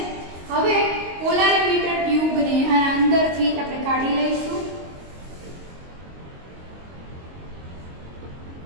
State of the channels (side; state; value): left; late; 22 ms